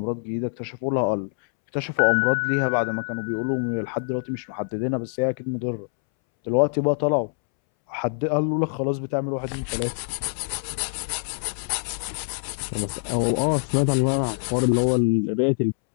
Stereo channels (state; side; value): silent; right; 62 dB below the other